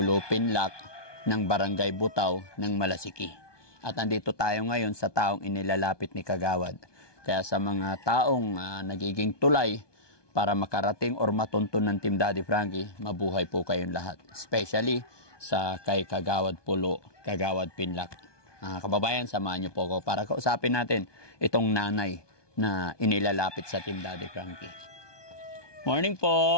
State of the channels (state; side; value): late; right; 1.2 ms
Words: Pinlac ng Barangay Butaw ng Malasiki. At andito tayo ngayon sa taong inilalapit ni Kagawad. Kaya sa mga taong nagiging tulay para makarating or matuntun ng Team Daddy Frankie, mabuhay po kayong lahat. Especially sa kay Kagawad Pulo, Kagawad Pinlac. Kababayan, samahan niyo po ako para kausapin natin itong nanay na inilalapit sa Team Daddy Frankie. Morning